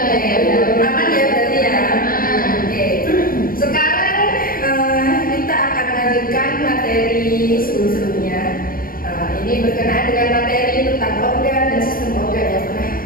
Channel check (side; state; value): right; late; 0.41 ms